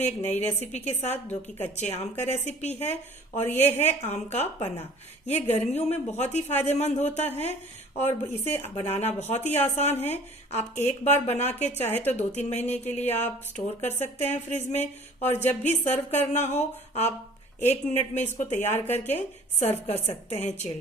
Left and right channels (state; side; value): normal; both; correlation 0.49